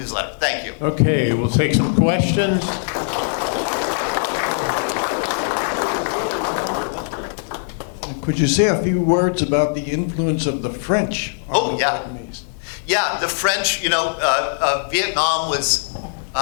Thank you. Okay, we'll take some questions. Could you say a few words about the influence of the French on the Vietnamese? Yeah, the French, Vietnam was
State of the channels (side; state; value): right; silent; digital silence